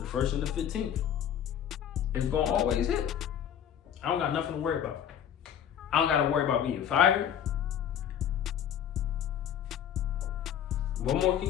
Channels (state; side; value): quieter; right; 9.4 dB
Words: 1st and the 15th. It's gonna always hit. I don't got nothing to worry about. I don't gotta worry about being fired. What more can